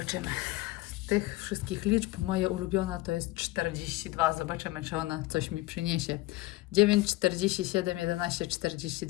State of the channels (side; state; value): right; quieter; 19.2 dB